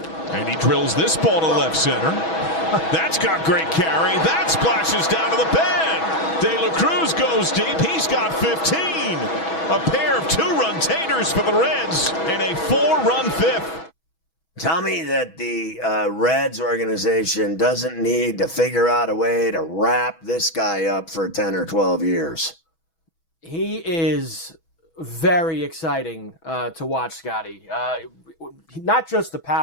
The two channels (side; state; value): right; late; 6.3 ms